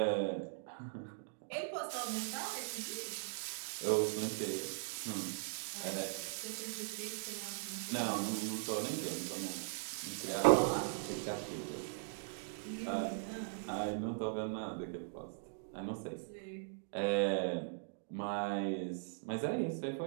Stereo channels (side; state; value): left; silent; digital silence